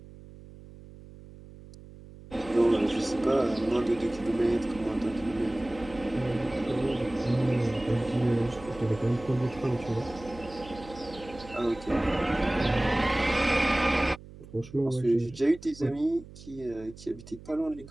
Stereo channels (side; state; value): right; noise; hum, 18 dB below the sound